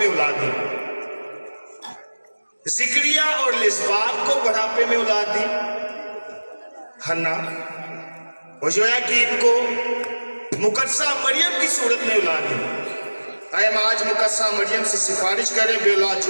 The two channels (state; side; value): inverted; both; correlation -1.00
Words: औलाद दी, जिक्रिया और लिस्बात को बुढ़ापे में औलाद दी, हन्ना और योयाकीम को मुकद्दसा मरियम की सूरत में औलाद दी। आए हम आज मुकद्दसा मरियम से सिफारिश करें बेऔलाद